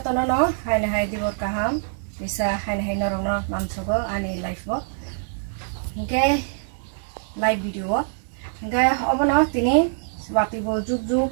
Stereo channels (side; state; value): left; silent; digital silence